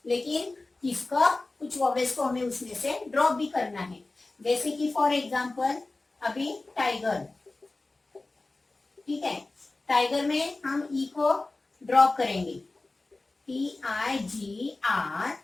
लेकिन इसका कुछ वोवेल्स को हमें उसमें से ड्रॉप भी करना है, जैसे कि फॉर एग्जांपल अभी टाइगर। ठीक है, टाइगर में हम ई को ड्रॉप करेंगे, TIGR,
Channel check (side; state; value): right; quieter; 3.2 dB